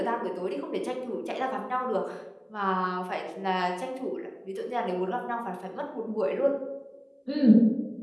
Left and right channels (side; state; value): both; identical; correlation 1.00